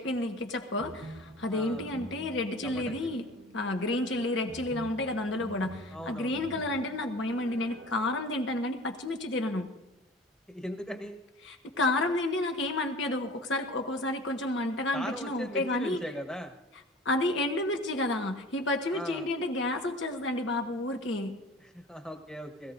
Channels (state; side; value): normal; both; correlation 0.41